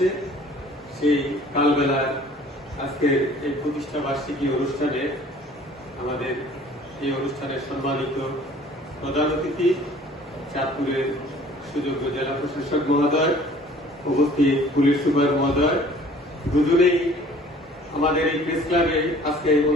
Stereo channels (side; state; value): both; normal; correlation 0.52